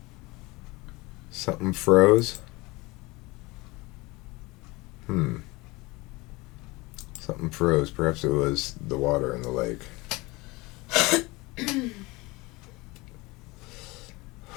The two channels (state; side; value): quieter; right; 23.2 dB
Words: Something froze? Something froze. Perhaps it was the water in the lake.